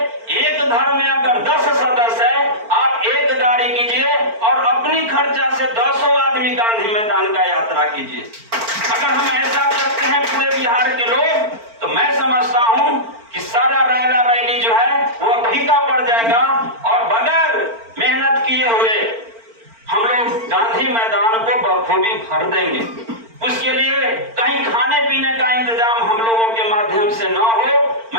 एक घर में अगर 10 सदस्य है, आप एक गाड़ी कीजिए और अपनी खर्चा से 10 आदमी गांधी मैदान का यात्रा कीजिए। अगर हम ऐसा करते हैं पूरे बिहार के लोग, तो मैं समझता हूं कि सारा रैला रैली जो है वो फीका पड़ जाएगा और बगैर मेहनत किए हुए हम लोग गांधी मैदान को बखूबी भर देंगे। उसके लिए कहीं खाने पीने का इंतजाम हम लोगों के माध्यम से न हो।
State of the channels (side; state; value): left; late; 4.4 ms